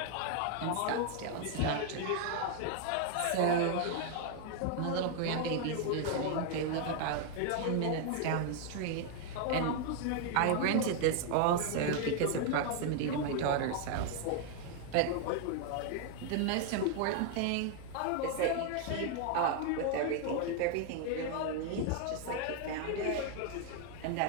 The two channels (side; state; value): both; different; correlation 0.00